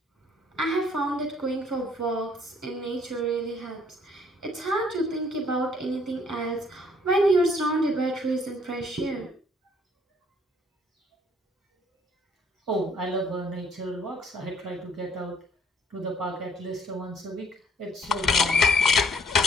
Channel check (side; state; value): both; normal; correlation 0.62